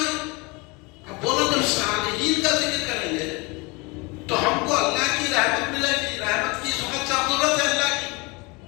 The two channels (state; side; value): quieter; right; 27.1 dB